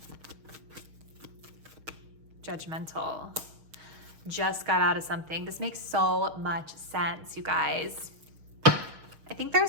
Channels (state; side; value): late; left; 6.4 ms